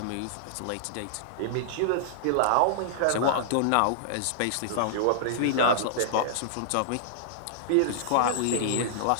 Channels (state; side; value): different; both; correlation -0.02